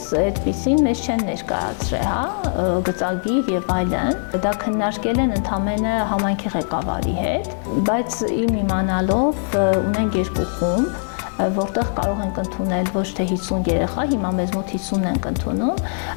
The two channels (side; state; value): right; silent; 59 dB below the other